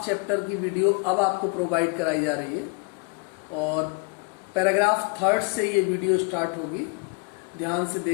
चैप्टर की वीडियो अब आपको प्रोवाइड कराई जा रही है और पैराग्राफ थर्ड से ये वीडियो स्टार्ट होगी। ध्यान से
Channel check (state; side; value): quieter; right; 33.1 dB